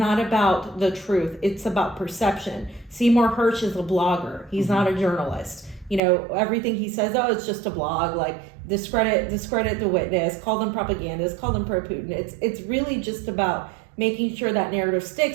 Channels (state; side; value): drops out; left; at 6.0 s